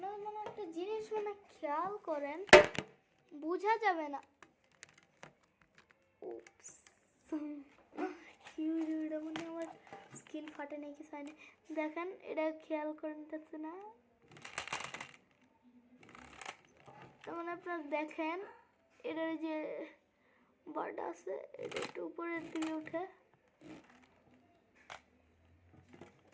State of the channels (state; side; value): identical; both; correlation 1.00